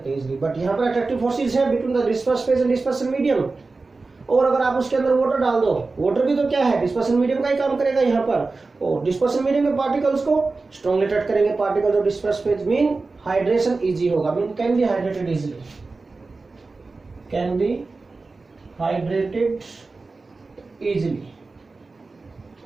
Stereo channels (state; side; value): quieter; left; 3.8 dB